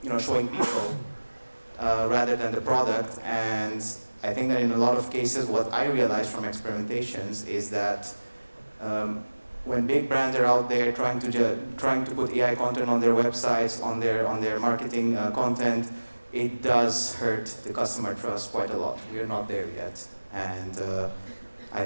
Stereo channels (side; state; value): both; inverted; correlation -1.00